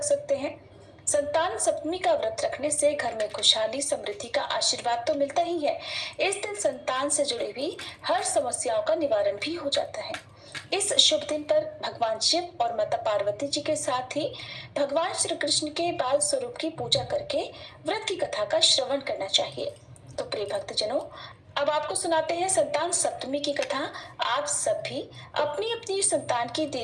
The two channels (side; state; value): both; identical; correlation 1.00